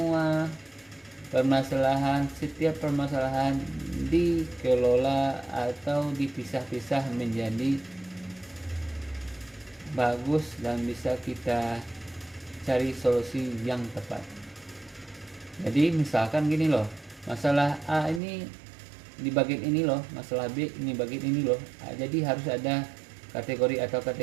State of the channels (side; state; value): left; drops out; at 18.2 s